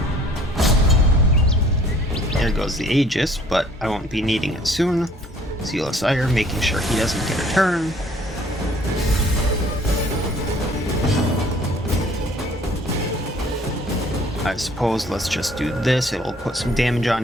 There goes the Aegis, but I won't be needing it soon. Sealess Ire, making sure he doesn't get a turn. I suppose let's just do this. It'll put some damage on,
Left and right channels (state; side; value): normal; both; correlation 0.56